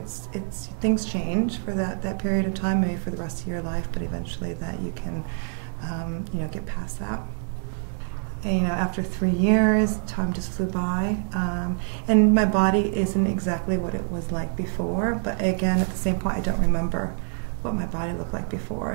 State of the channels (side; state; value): left; silent; 61 dB below the other